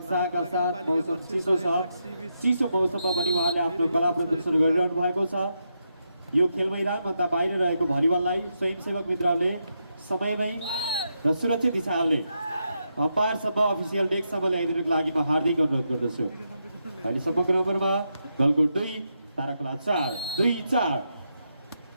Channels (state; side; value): inverted; both; correlation -0.83